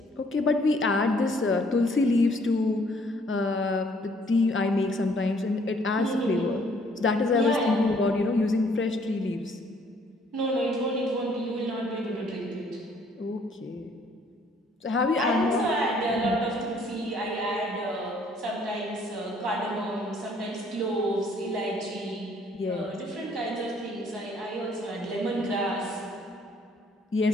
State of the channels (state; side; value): normal; both; correlation 0.62